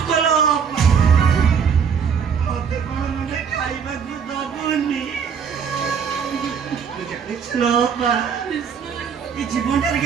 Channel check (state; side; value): quieter; left; 6.9 dB